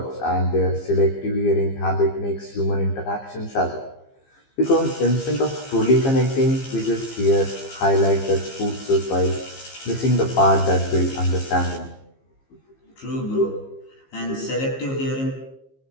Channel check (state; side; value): late; right; 15 ms